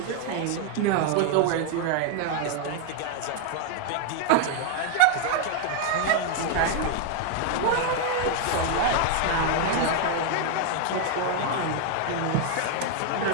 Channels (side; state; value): both; different; correlation 0.00